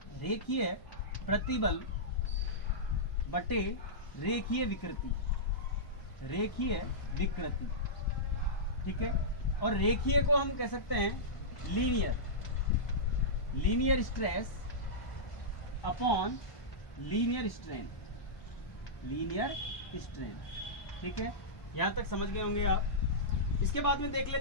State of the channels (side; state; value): right; late; 1.0 ms